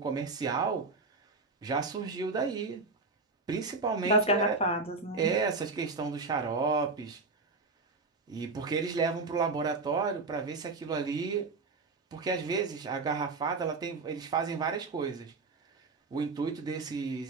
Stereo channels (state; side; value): quieter; left; 3.9 dB